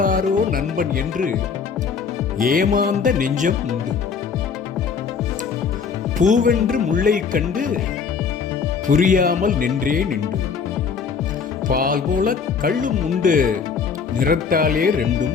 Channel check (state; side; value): quieter; right; 6.0 dB